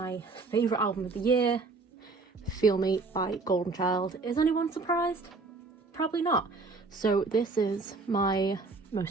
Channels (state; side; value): quieter; left; 3.9 dB